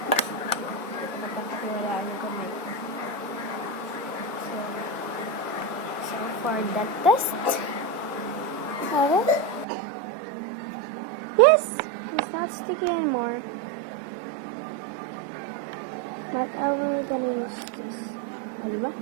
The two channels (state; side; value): drops out; left; at 9.7 s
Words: So for the test, yes, it's not sticky anymore. But I will gonna use this. Diba?